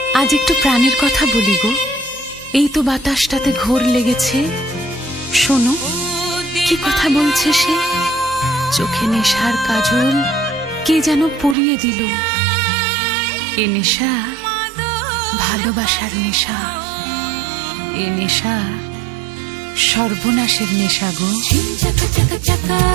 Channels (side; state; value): left; drops out; at 11.6 s